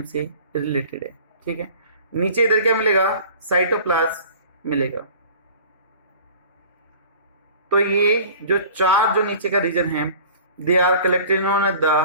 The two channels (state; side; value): inverted; both; correlation -0.45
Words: से रिलेटेड है। ठीक है। नीचे इधर क्या मिलेगा, साइटोप्लाज्म मिलेगा। तो ये जो 4 जो नीचे का रीजन है they are collected on